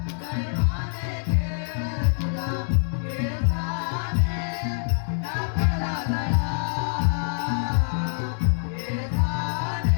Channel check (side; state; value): right; silent; digital silence